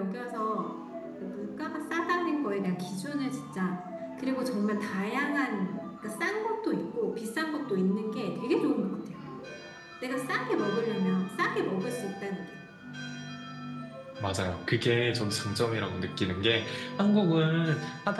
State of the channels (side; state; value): both; identical; correlation 1.00